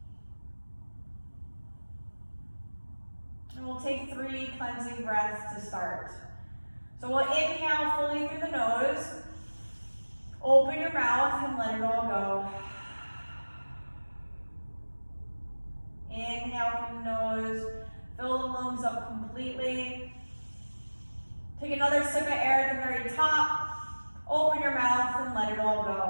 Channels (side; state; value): both; inverted; correlation -1.00